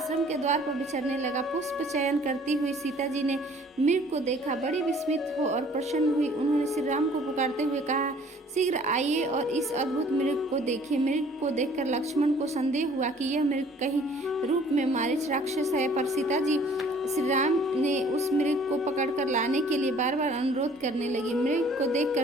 के द्वार पर विचरने लगा। पुष्प चयन करती हुई सीता जी ने मृग को देखा, बड़ी विस्मित हो और प्रसन्न हुई। उन्होंने श्री राम को पुकारते हुए कहा, शीघ्र आइए और इस अद्भुत मृग को देखिए। मृग को देखकर लक्ष्मण को संदेह हुआ कि यह मृग कहीं रूप में मारीच राक्षस है, पर सीता जी श्री राम ने उस मृग को पकड़कर लाने के लिए बार बार अनुरोध करने लगी। मृग को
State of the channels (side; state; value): both; normal; correlation 0.55